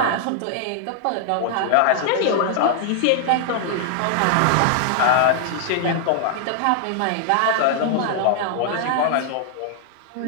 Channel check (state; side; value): different; both; correlation 0.00